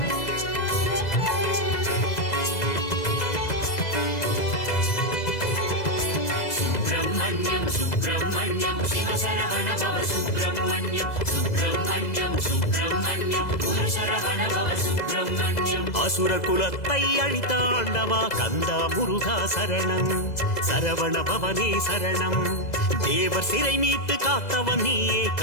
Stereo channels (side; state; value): right; late; 2.0 ms